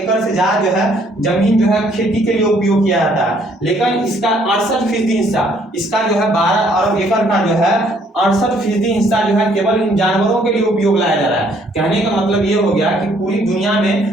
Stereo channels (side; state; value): both; normal; correlation 0.64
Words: से ज्यादा जो है जमीन जो है खेती के लिए उपयोग किया जाता है। लेकिन इसका 68% हिस्सा, इसका जो है 12 अरब एकड़ का जो है 68% हिस्सा जो है केवल इन जानवरों के लिए उपयोग लाया जा रहा है। कहने का मतलब ये हो गया कि पूरी दुनिया में